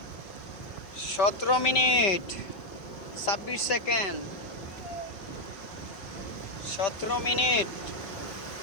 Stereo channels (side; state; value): right; late; 5.1 ms